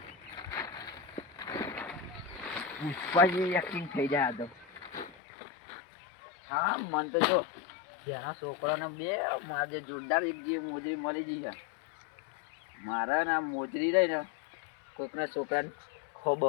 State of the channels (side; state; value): right; drops out; at 5.2 s